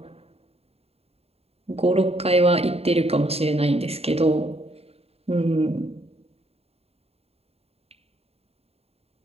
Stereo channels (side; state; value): left; late; 0.29 ms